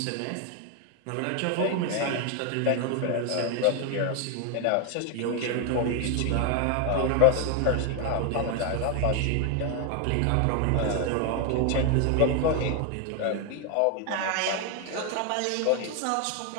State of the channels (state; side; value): different; both; correlation 0.01